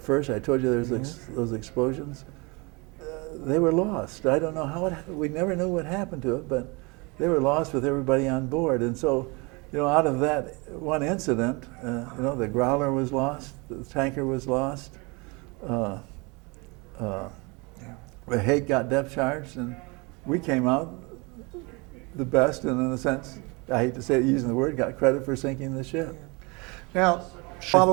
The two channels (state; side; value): quieter; left; 28.2 dB